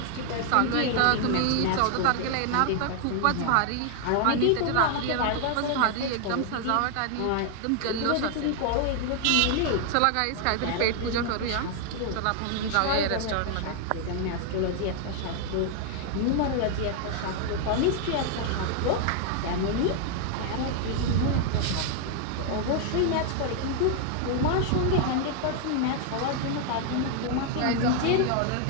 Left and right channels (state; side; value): different; both; correlation 0.00